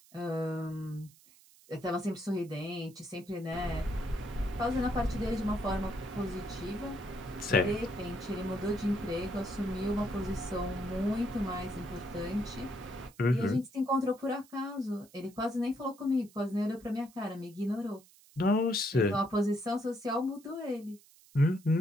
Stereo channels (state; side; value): noise; right; hiss, 26 dB below the sound